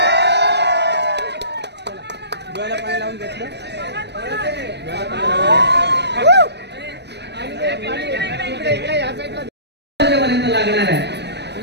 पाणी लावून घेतलं. पर्यंत लागणार आहे.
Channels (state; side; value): late; left; 0.50 ms